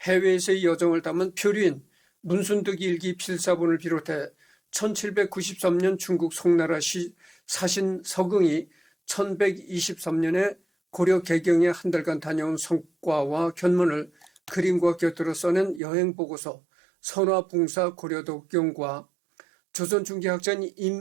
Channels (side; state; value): left; drops out; at 15.8 s